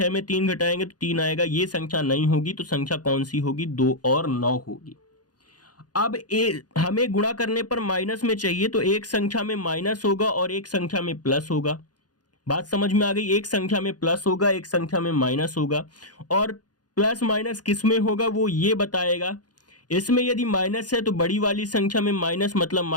में 3 घटाएंगे तो 3 आएगा, ये संख्या नहीं होगी। तो संख्या कौन सी होगी, 2 और 9 होगी। अब हमें गुणा करने पर माइनस में चाहिए, तो एक संख्या में माइनस होगा और एक संख्या में प्लस होगा। बात समझ में आ गई, एक संख्या में प्लस होगा, एक संख्या में माइनस होगा, और प्लस माइनस किस में होगा वो ये बताएगा। इसमें यदि माइनस है तो बड़ी वाली संख्या में माइनस मतलब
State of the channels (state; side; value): late; right; 0.69 ms